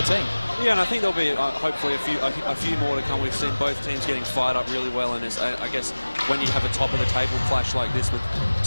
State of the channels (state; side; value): inverted; both; correlation -1.00